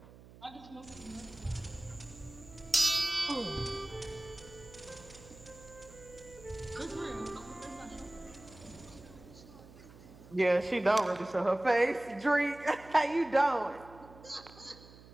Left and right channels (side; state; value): right; noise; hum, 20 dB below the sound